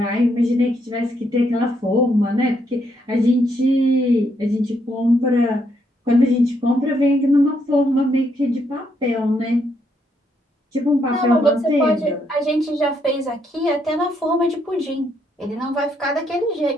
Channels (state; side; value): normal; both; correlation 0.75